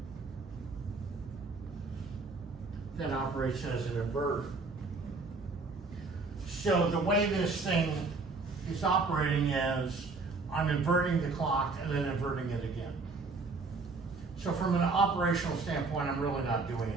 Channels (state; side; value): quieter; left; 3.9 dB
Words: that operates as an inverter. So the way this thing is operating is I'm inverting the clock and then inverting it again. So from an operational standpoint, I'm really not doing